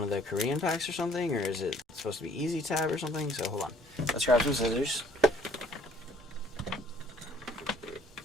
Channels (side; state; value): both; normal; correlation 0.59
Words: of the Korean packs or something? Or is it supposed to be easy tab or something? So, hold on. Let's grab some scissors.